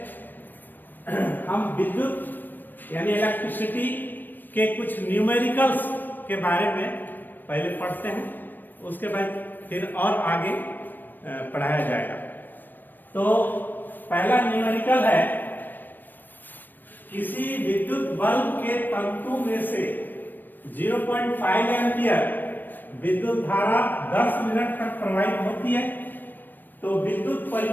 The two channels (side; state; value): right; late; 0.092 ms